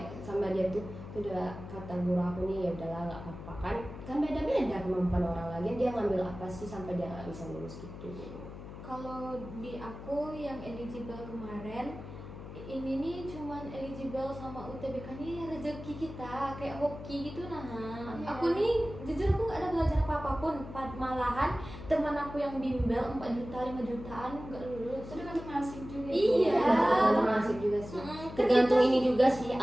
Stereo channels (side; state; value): left; noise; hum, 12 dB below the sound